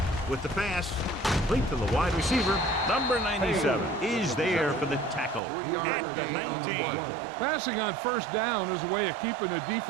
With the pass, complete to the wide receiver. Number 97 is there for the tackle at the 19. Passing on first down is a way of keeping the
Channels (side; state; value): left; drops out; at 5.4 s